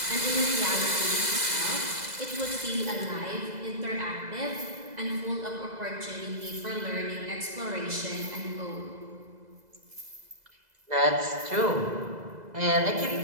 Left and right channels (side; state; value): left; late; 2.0 ms